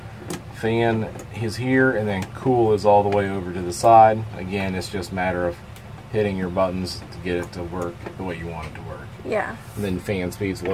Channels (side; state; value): both; identical; correlation 1.00